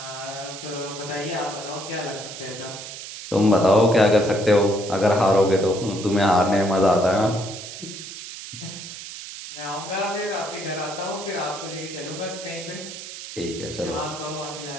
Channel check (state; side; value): noise; right; hiss, 11 dB below the sound